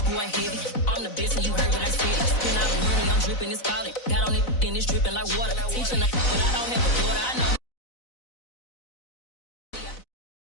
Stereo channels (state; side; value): late; right; 4.0 ms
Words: heavy. I'm the best, and you heard what I said. Spend all the money, I'm dripping, it's falling. Got on it, then it's dripping like water. Teaching, but I don't have a daughter. I know.